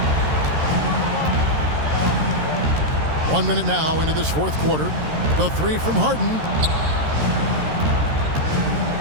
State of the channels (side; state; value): left; late; 13 ms